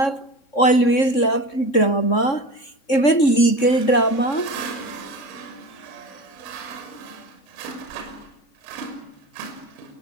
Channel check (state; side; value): late; right; 3.6 ms